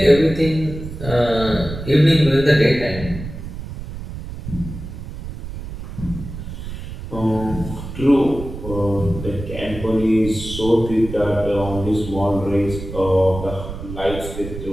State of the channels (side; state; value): right; noise; rumble, 10 dB below the sound